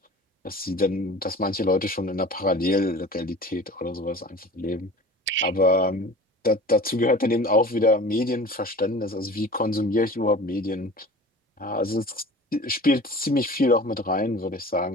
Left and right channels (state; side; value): normal; both; correlation 0.40